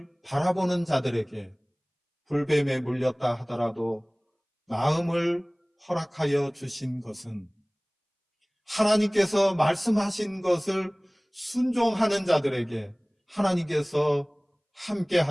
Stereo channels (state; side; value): identical; both; correlation 1.00